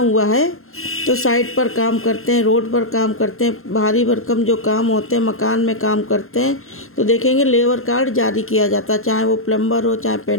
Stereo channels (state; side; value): late; right; 0.61 ms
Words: है, तो साइट पर काम करते हैं, रोड पर काम करते हैं, भारी भरकम जो काम होते हैं, मकान में काम करते हैं, तो देखेंगे लेबर कार्ड जारी किया जाता है। चाहे वो प्लम्बर हो, चाहे